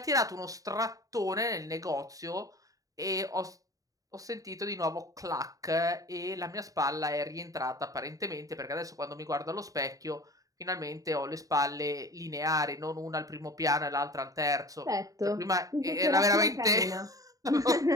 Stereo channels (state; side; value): late; left; 0.17 ms